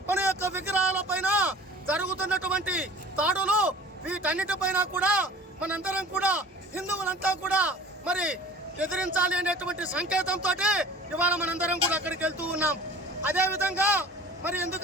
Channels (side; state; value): both; normal; correlation 0.44